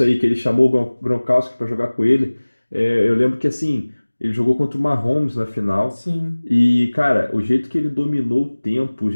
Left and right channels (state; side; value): inverted; both; correlation -1.00